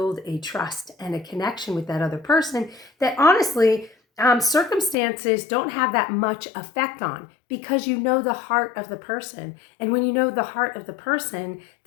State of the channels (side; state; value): right; drops out; at 5.0 s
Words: a trust and a connection with that other person that honestly, circumstances don't have that much effect on, because you know the heart of the person. And when you know the heart of the person,